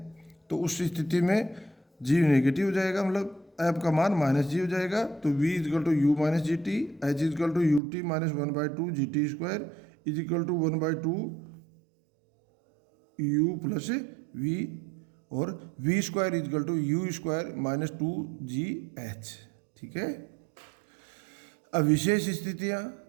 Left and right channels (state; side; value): drops out; left; at 7.8 s